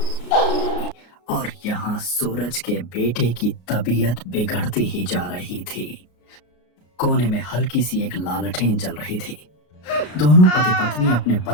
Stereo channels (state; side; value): late; right; 33 ms